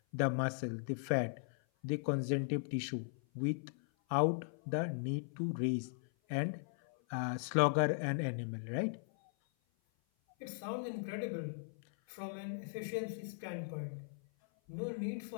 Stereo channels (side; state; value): right; silent; 52 dB below the other